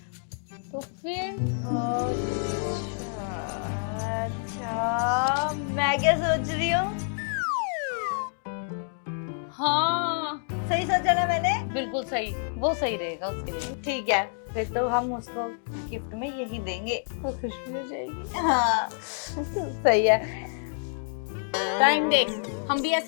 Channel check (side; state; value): right; silent; digital silence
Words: तो फिर अच्छा, मैं क्या सोच रही हूँ? हाँ सही सोचा ना मैंने? बिल्कुल सही, वो सही रहेगा उसके लिए। ठीक है, फिर तो हम उसको गिफ्ट में यही देंगे, तो खुशी हो जाएगी। हाँ सही है। टाइम देख, हम भी